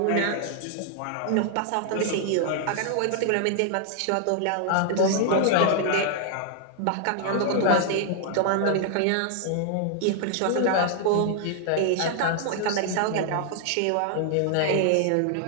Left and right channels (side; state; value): both; different; correlation 0.00